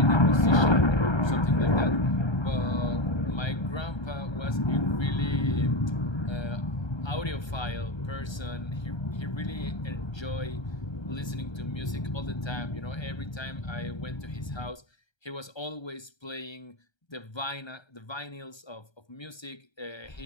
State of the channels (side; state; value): right; late; 1.3 ms